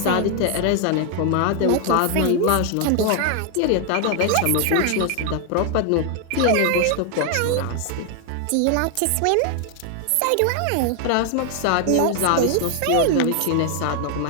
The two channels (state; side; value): different; both; correlation 0.00